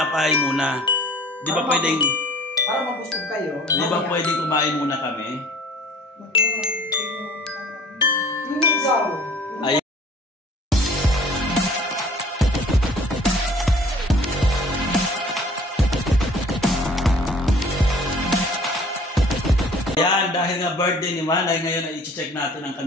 muna? Di ba pwedeng... Para mabusog kayo. Di ba pwedeng kumain muna kami? Ay. Yan, dahil nga birthday ni Manay, ngayon ay i-check natin ang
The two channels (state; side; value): normal; both; correlation 0.50